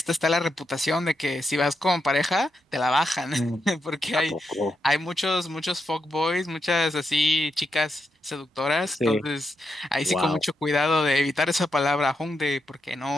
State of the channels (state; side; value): normal; both; correlation 0.83